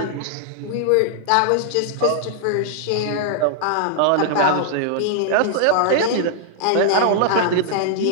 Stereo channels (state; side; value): different; both; correlation -0.01